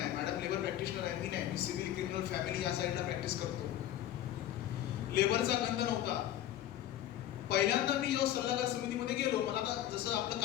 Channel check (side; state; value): right; quieter; 12.5 dB